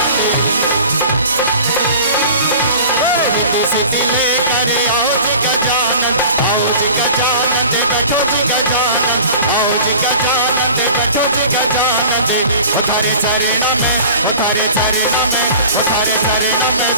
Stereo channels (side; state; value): both; inverted; correlation -0.43